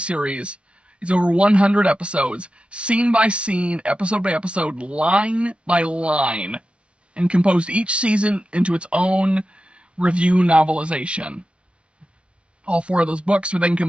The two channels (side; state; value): left; late; 0.059 ms